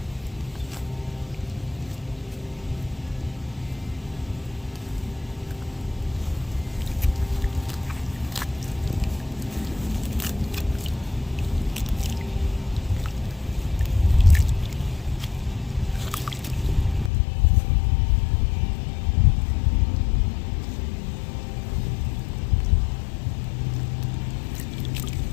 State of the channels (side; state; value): right; drops out; at 17.1 s